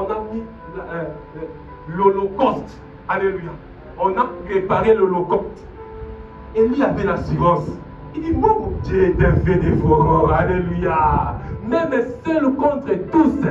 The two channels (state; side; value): identical; both; correlation 1.00